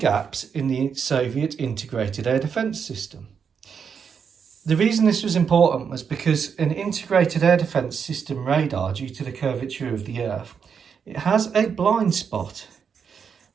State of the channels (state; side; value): quieter; left; 6.7 dB